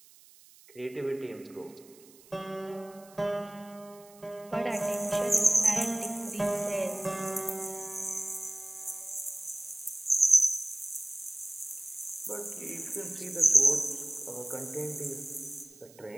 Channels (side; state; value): right; noise; hiss, 24 dB below the sound